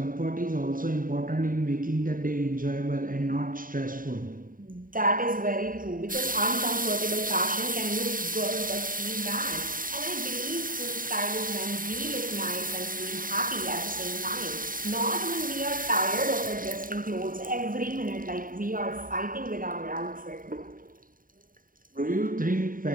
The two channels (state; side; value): late; left; 0.40 ms